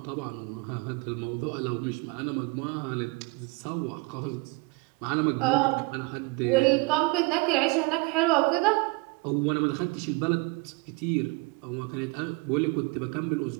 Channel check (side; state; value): left; quieter; 27.2 dB